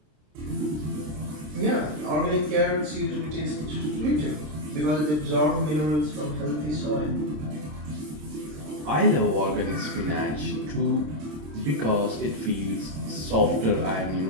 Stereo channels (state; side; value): late; left; 26 ms